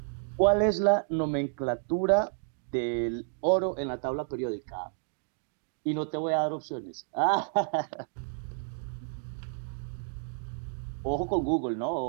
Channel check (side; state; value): left; silent; digital silence